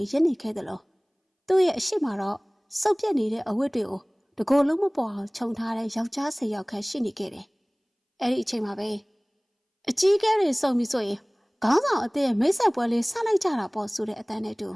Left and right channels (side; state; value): both; identical; correlation 1.00